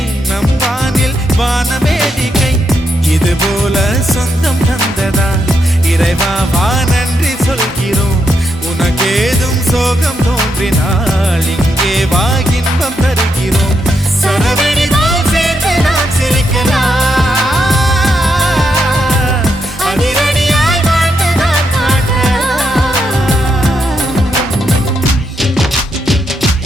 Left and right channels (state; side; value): normal; both; correlation 0.81